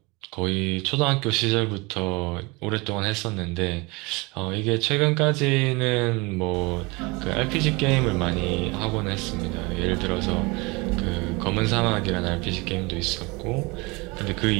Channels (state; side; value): quieter; left; 25.9 dB